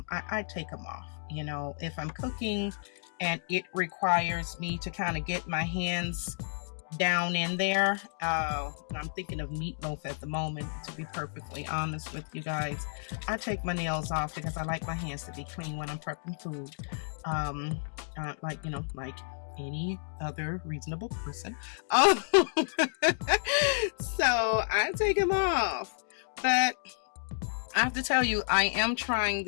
take them off. If I'm cooking and it requires me to kind of get my hands down in there, I'm thinking of meatloaf at the moment, to be perfectly honest with you guys. I take my nails off because I like my hands to be clean when I'm prepping food, like any other reasonable person. So I take them off, but I have to tell you, I am trying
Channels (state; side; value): silent; right; digital silence